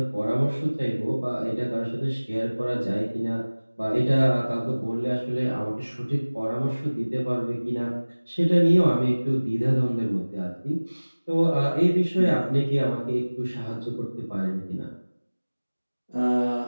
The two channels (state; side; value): inverted; both; correlation -1.00